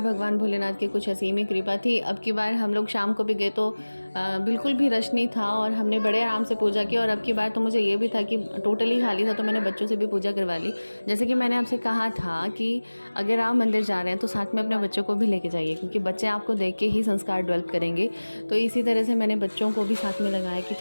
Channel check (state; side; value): inverted; both; correlation -1.00